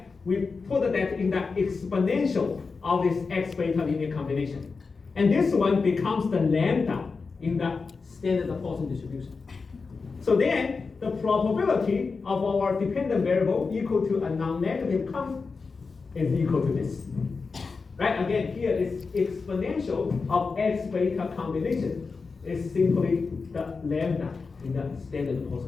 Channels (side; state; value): right; quieter; 4.6 dB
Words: We put that in the exponential of this x beta linear combination. And this one becomes the lambda in the standard Poisson distribution. So then, the probability of our dependent variable equal to a non-negative cont is equal to this. Right? Again, here is exponential of x beta combination is simply the lambda in the standard